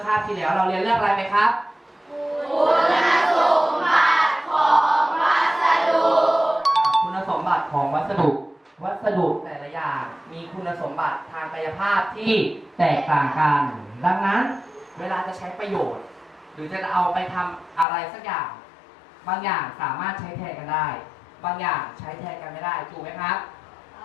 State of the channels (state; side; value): drops out; right; at 17.9 s